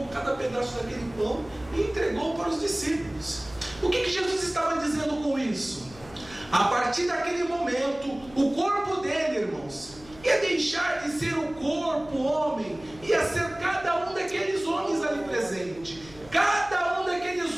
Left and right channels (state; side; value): noise; left; hum, 21 dB below the sound